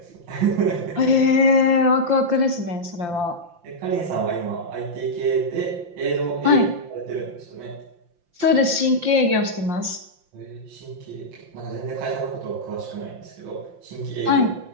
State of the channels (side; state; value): left; late; 5.8 ms